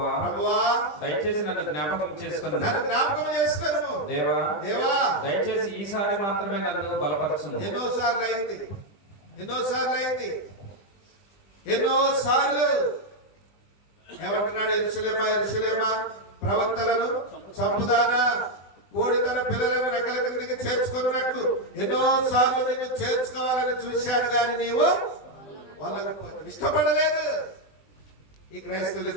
దయచేసి నన్ను జ్ఞాపకం చేసుకును. దేవా దయచేసి ఈసారి మాత్రమే నన్ను బలపరచుము. ఎన్నోసార్లు ఏమంటున్నాడు? యెరూషలేమా ప్రవక్తలను చంపుదానా, కోడి తన పిల్లలను రెక్కల క్రిందికి చేర్చుకున్నట్లు ఎన్నోసార్లు నిన్ను చేర్చుకోవాలని చూశాను, కానీ నీవు వాళ్ళకపోతే ఇష్టపడలేదు. ఈ క్రైస్తవులు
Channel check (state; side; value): late; right; 20 ms